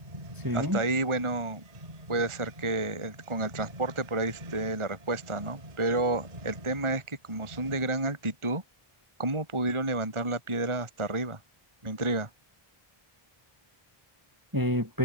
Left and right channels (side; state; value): left; late; 1.4 ms